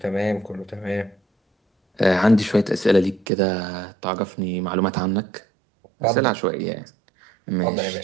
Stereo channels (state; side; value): drops out; left; at 3.2 s